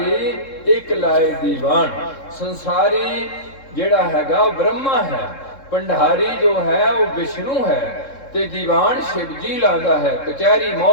ਇੱਕ ਲਾਏ ਦੀਵਾਨ। ਸੰਸਾਰੀ ਜਿਹੜਾ ਹੈਗਾ ਉਹ ਬ੍ਰਹਮਾ ਹੈ, ਭੰਡਾਰੀ ਜੋ ਹੈ ਉਹ ਵਿਸ਼ਨੂੰ ਹੈ, ਤੇ ਦੀਵਾਨ ਸ਼ਿਵ ਜੀ ਲਾਉਂਦਾ ਹੈ, ਕਚਹਿਰੀ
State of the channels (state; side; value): late; right; 3.7 ms